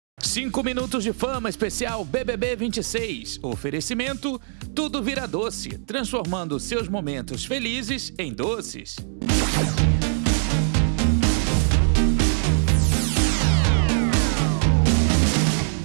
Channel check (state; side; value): silent; left; digital silence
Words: 5 minutos de fama especial BBB 26. Oferecimento, tudo vira doce, transformando seus momentos felizes em doces.